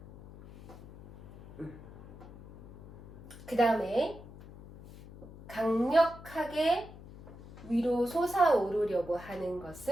그 다음에 강력하게 위로 솟아오르려고 하는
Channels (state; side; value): noise; left; hum, 17 dB below the sound